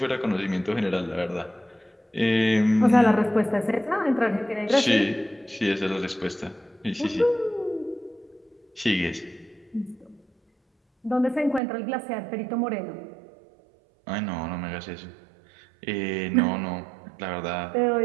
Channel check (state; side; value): drops out; left; at 11.6 s